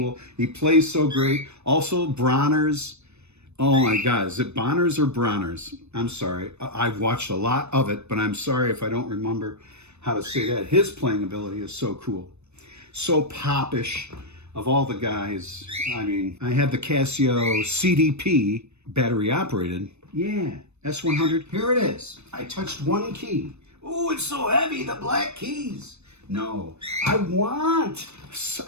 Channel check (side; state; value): left; late; 0.81 ms